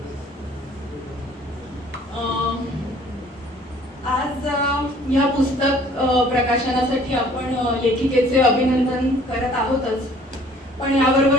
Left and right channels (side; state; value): both; normal; correlation 0.55